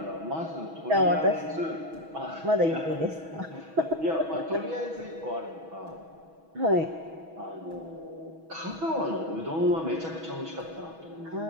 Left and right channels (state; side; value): late; left; 6.2 ms